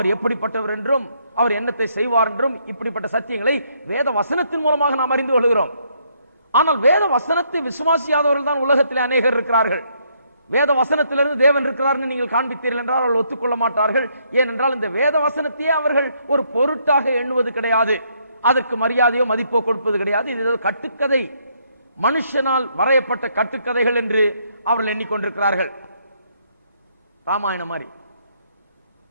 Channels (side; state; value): both; inverted; correlation -0.72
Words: எப்படிப்பட்டவர் என்றும், அவர் என்னத்தை செய்வார் என்றும், இப்படிப்பட்ட சத்தியங்களை வேத வசனத்தின் மூலமாக நாம் அறிந்து கொள்கிறோம். ஆனால் வேத வசனத்தை விசுவாசியாதவர்கள் தான் உலகத்திலே அநேகர் இருக்கிறார்கள். வேத வசனத்திலிருந்து தேவன் இருக்கிறார் நீங்கள் காண்பித்தீர்கள் என்றால் அவர்கள் ஒத்துக்கொள்ள மாட்டார்கள். ஏனென்றால் இந்த வேத வசனத்தையே அவர்கள் ஒரு பொருட்டாக எண்ணுவது கிடையாது. அதற்கு மரியாதையோ மதிப்போ கொடுப்பது கிடையாது. இது கட்டுக்கதை, மனுஷனால் வரையப்பட்ட கட்டுக்கதைகள் என்று அவர்கள் எண்ணிக்கொண்டிருக்கிறார்கள். ராமாயணம் மாதிரி